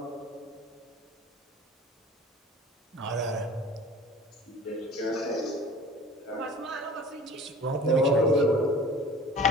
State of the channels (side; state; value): both; normal; correlation 0.43